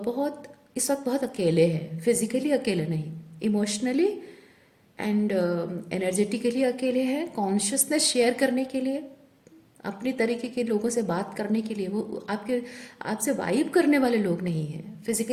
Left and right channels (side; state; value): both; identical; correlation 1.00